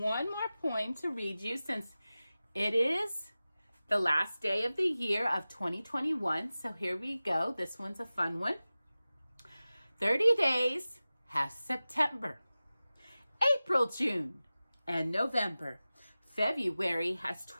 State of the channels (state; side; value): inverted; both; correlation -0.96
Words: more poem to read you since it is the last day of the year of 2021. So here we go. This one's a fun one. 30 days has September, April, June, and November. February has